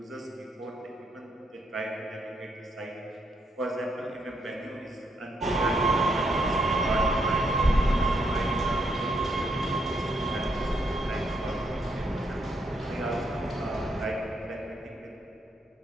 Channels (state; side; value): normal; both; correlation 0.76